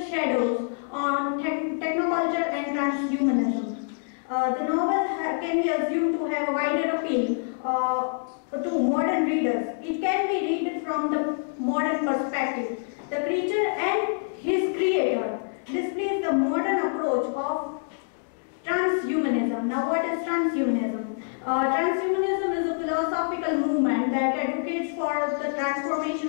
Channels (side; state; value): right; silent; digital silence